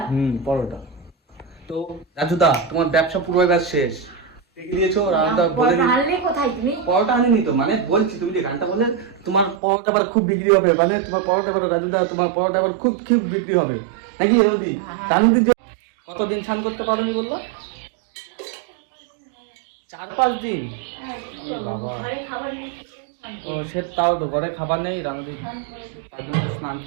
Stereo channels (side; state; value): left; drops out; at 9.6 s